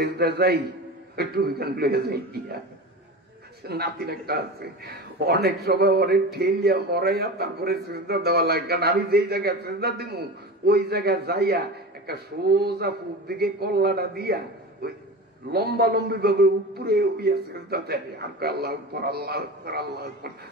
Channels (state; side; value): normal; both; correlation 0.29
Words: যাই ওই টুপি খান লইয়া যাই, নাতিন একটা আছে, অনেক সময় অনেক ঠেলিয়া মরাইয়া তারপরে সেজদা দেওয়া লাগে, কারণ আমি যেই জায়গায় সেজদা দিব ওই জায়গায় যাইয়া একটা সোজা পূব দিকে কল্লাটা দিয়া ওই লম্বা লম্বি ভাবে উপরে উইয়া সেজদা দেয়। আর আল্লাহ আকবার, আল্লাহ আকবার, আল্লাহ আকবার,